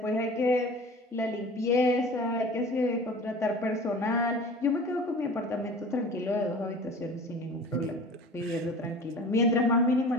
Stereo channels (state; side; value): normal; both; correlation 0.41